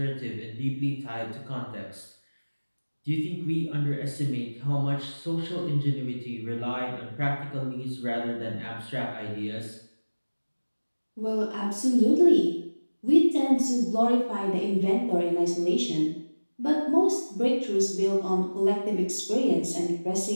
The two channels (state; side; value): inverted; both; correlation -1.00